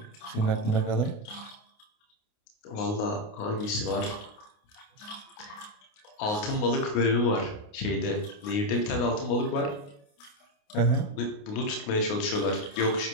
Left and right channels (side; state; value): right; late; 29 ms